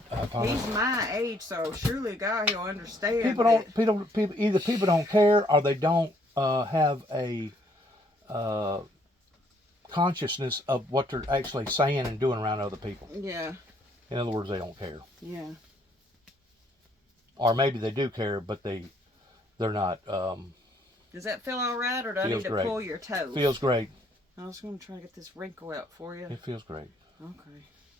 I find He's my age, so surely God, he'll understand. people either people don't care or they don't have a consciousness of what they're actually saying and doing around other people. Yeah. In other words, they don't care. Yeah. Or maybe they do care, but they're not. Does that feel all right, or do I need to pull your toes? Feels great. I was going to try to get this wrinkle out for you. It feels great. Okay.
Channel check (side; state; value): both; normal; correlation 0.67